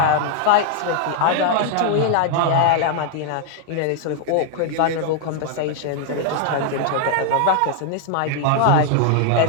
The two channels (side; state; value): both; different; correlation 0.00